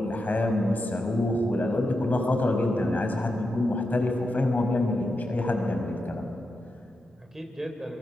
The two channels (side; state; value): both; normal; correlation 0.87